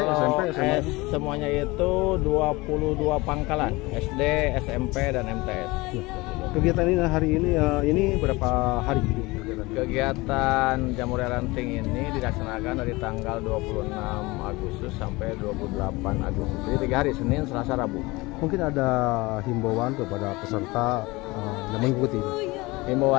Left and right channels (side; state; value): right; quieter; 22.6 dB